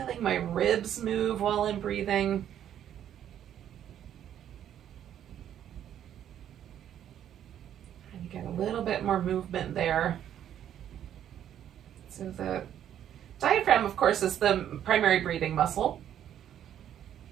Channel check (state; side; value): quieter; left; 10.3 dB